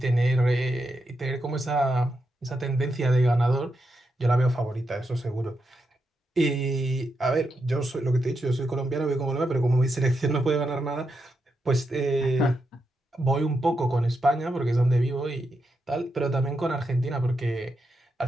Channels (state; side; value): normal; both; correlation 0.84